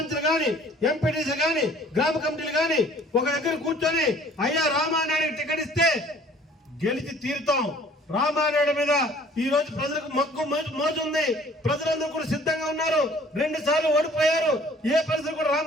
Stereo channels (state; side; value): normal; both; correlation 0.53